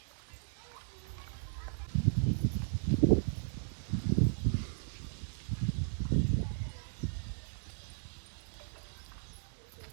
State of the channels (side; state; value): left; silent; 54 dB below the other